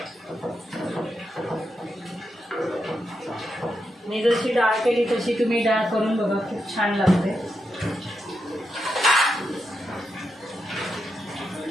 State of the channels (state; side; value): normal; both; correlation 0.85